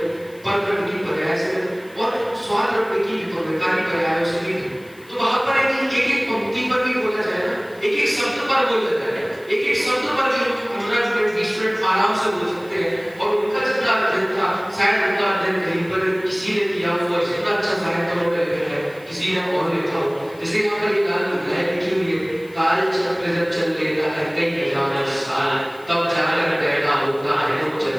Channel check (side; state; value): left; noise; hiss, 27 dB below the sound